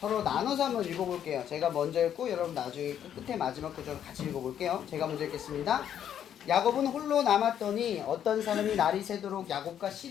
나눠서 한번 읽어볼게요. 제가 먼저 읽고 여러분 나중에 끝에 마지막 구절을 같이 읽어볼게요. 제가 먼저 읽겠습니다. 야곱은 홀로 남았더니 어떤 사람이 날이 새도록 야곱과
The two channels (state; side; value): quieter; right; 9.7 dB